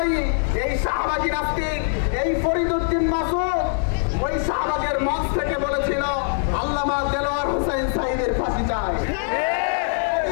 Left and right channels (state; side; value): silent; right; digital silence